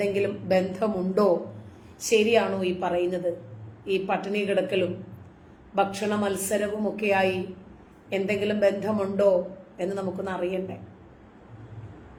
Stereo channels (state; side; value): identical; both; correlation 1.00